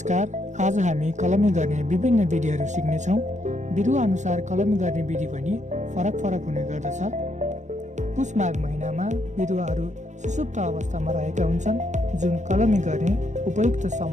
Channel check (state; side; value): late; left; 0.35 ms